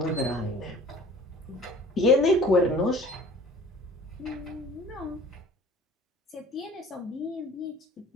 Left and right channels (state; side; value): normal; both; correlation 0.48